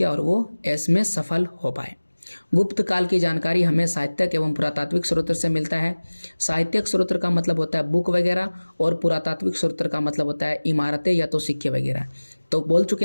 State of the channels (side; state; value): both; inverted; correlation -1.00